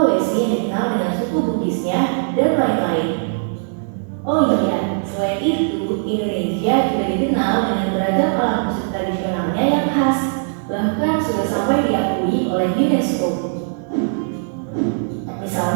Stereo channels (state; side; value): silent; left; digital silence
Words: yang dikenal dengan suku Bugisnya, dan lain-lain. Oh iya, selain itu, Indonesia juga dikenal dengan beragam alat musik tradisionalnya yang khas, bahkan sudah sampai diakui oleh UNESCO.